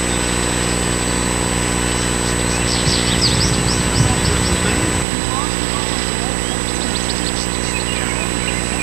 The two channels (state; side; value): drops out; left; at 5.1 s